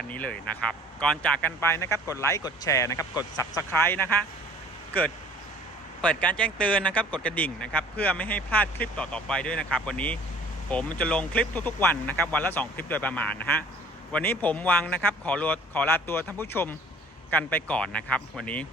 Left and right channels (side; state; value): both; normal; correlation 0.51